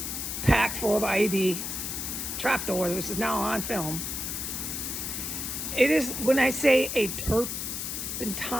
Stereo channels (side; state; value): left; noise; hiss, 4 dB below the sound